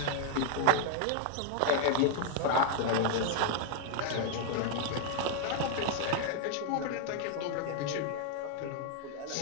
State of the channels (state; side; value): different; both; correlation 0.00